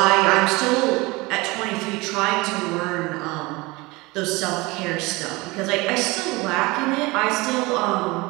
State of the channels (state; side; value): quieter; left; 23.4 dB